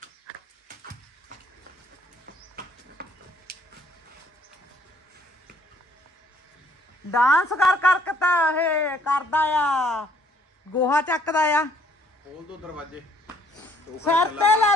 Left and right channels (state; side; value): normal; both; correlation 0.63